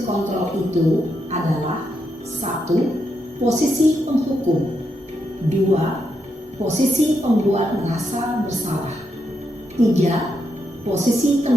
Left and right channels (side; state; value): both; normal; correlation 0.82